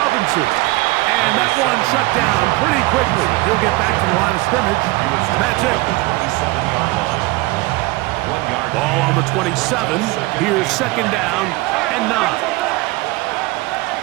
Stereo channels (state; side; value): quieter; left; 21.7 dB